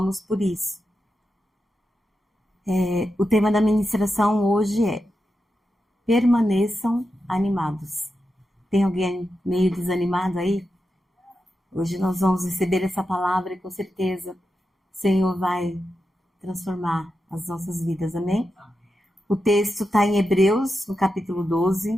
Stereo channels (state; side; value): normal; both; correlation 0.89